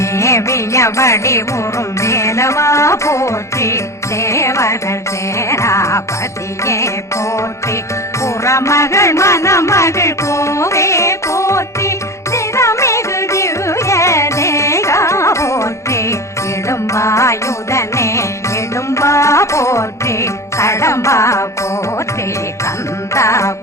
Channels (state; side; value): late; right; 0.14 ms